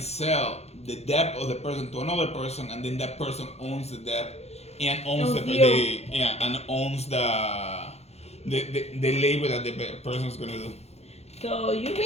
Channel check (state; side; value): late; right; 0.31 ms